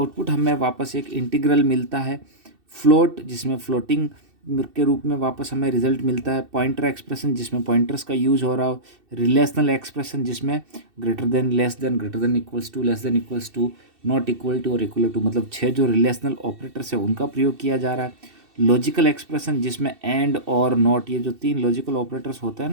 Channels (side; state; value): left; late; 2.7 ms